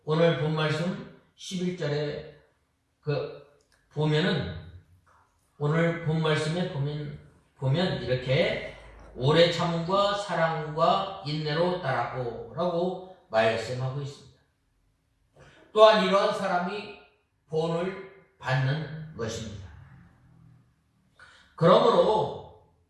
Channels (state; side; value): identical; both; correlation 1.00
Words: 오늘 본 말씀 11절에 보면은, 오늘 본 말씀에 보면 이렇게 오래 참음과 사랑과 인내로 따라고 라고 말씀하고 있습니다. 또한 이러한 사람이 본을 받는 것입니다. 그러므로